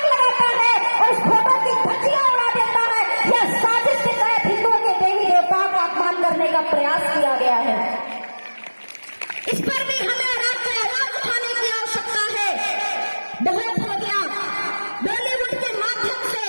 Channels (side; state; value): both; inverted; correlation -1.00